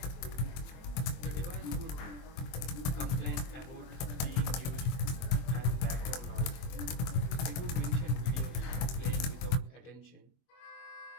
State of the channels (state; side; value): late; right; 23 ms